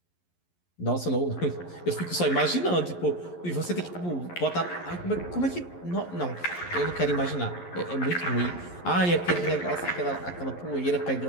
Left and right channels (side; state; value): right; late; 11 ms